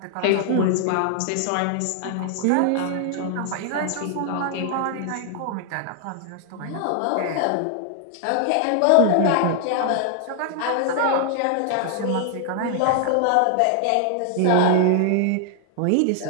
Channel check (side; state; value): both; different; correlation 0.00